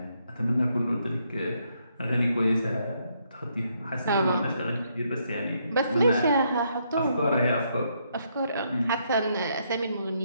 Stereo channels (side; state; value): both; inverted; correlation -0.75